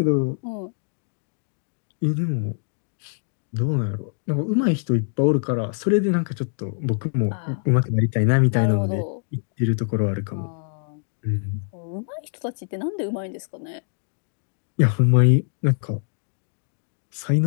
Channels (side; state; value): right; silent; digital silence